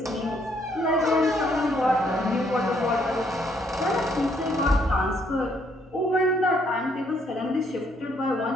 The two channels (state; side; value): normal; both; correlation 0.69